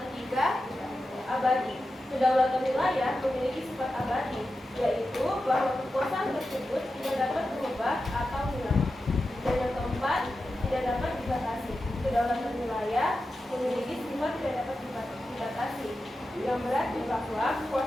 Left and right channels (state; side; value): normal; both; correlation 0.91